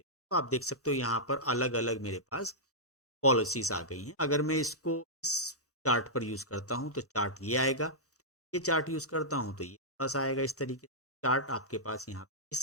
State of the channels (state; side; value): normal; both; correlation -0.12